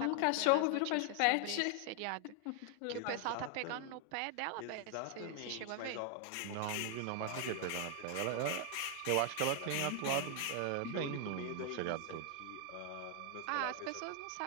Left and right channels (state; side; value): different; both; correlation 0.00